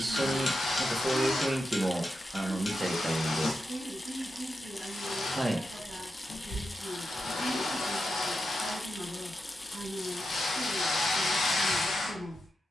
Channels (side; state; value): both; normal; correlation 0.88